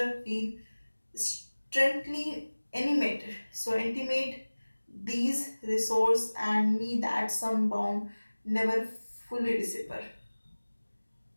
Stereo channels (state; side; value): inverted; both; correlation -1.00